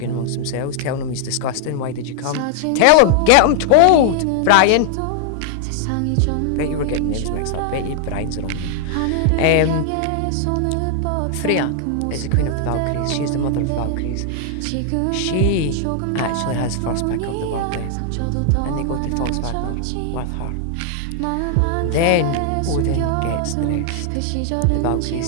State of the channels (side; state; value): both; different; correlation 0.00